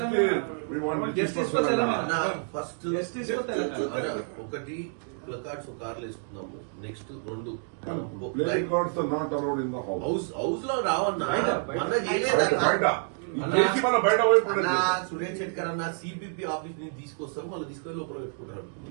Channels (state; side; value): silent; left; 55 dB below the other